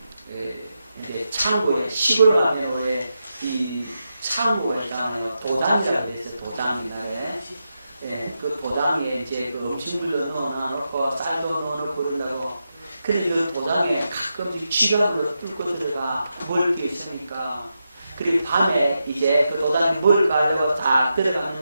이제 창고에, 시골 가면에 이 창고에 있잖아요. 도장이라고 해서 도장이다. 그 도장에 이제 그 음식물도 넣어놓고 쌀도 넣어놓고 그런다고. 그런데 그 도장에 가끔씩 쥐가 뚫고 들어가 먹을 게 있으니까. 그리고 밤에 이제 그 도장에 먹을 가려고 딱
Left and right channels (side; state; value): both; inverted; correlation -0.87